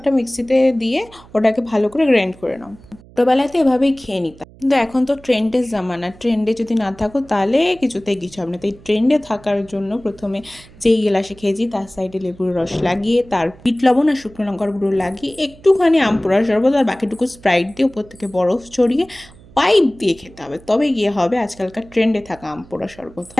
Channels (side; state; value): right; noise; hum, 23 dB below the sound